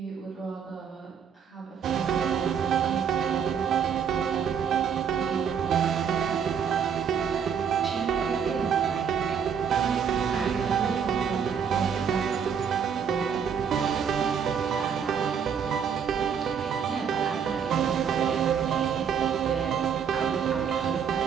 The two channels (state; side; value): quieter; left; 7.4 dB